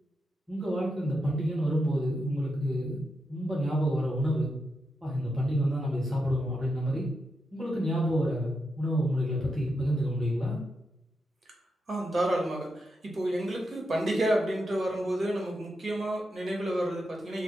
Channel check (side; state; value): both; normal; correlation 0.85